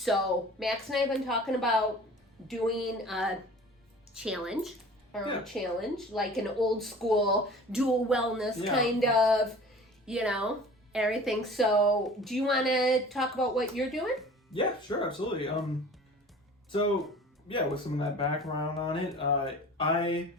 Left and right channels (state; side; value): normal; both; correlation 0.44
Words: Max and I have been talking about doing a challenge, like an old school dual wellness kind of, everything. So do you want to talk about what you're doing? Yeah, sure, absolutely. So with some of that background on it, I